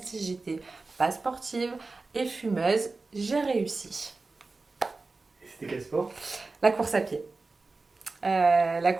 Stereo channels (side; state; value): left; quieter; 3.7 dB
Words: j'étais pas sportive et fumeuse, j'ai réussi. Et c'était quel sport? La course à pied. La